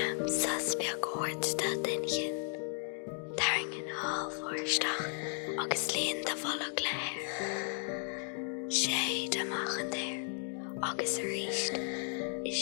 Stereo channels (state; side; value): silent; right; 54 dB below the other